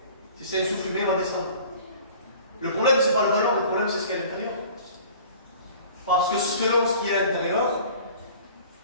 Si c'est un souffle humain, il va descendre. Le problème, c'est pas le ballon, le problème, c'est ce qu'il y a à l'intérieur. Parce que selon ce qu'il y a à l'intérieur,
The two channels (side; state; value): both; inverted; correlation -0.47